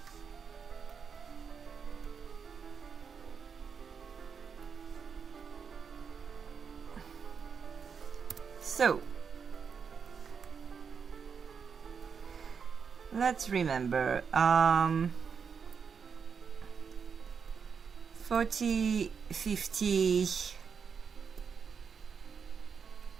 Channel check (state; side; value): quieter; left; 6.2 dB